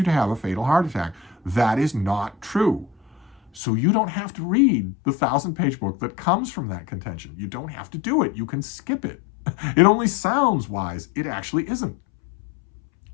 to have a fatal heart attack. That is not true. So you don't have to read the 1,000-page book that comes from that contention. You don't have to do it. You can skip it. It only sounds wise. It actually isn't.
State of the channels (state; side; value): drops out; right; at 3.6 s